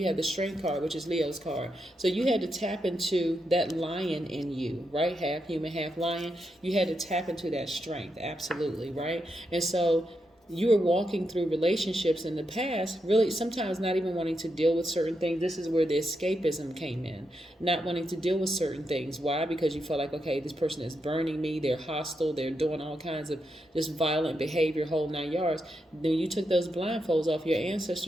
have the Strength card, which is Leo's card. So you had to tap into that lion in you, right? Half human, half lion. You had to tap into that strength, absolutely, right? And so you were walking through relationships in the past, really sometimes not even wanting to deal with certain things. This is where the escapism came in, not wanting to deal with certain things. Why? Because you felt like, okay, this person is burning me, they're hostile, they're doing all kinds of just violent behavior, whole 9 yards. Then you took those blindfolds off, your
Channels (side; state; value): both; normal; correlation 0.84